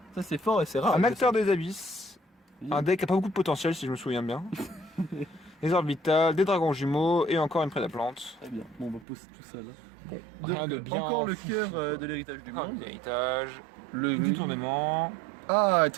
Ça c'est fort et c'est rare. un acteur des abysses, Oui. un deck qui a pas beaucoup de potentiel si je me souviens bien, des orbitales, des dragons jumeaux et encore une prédaplante. Très bien. Bon, on va poser tout ça là. Bon, rien de bien. Encore le fou, cœur quoi. de l'héritage du Ah, monde. l'héritage, Le du tournement. Ah,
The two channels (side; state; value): left; drops out; at 9.1 s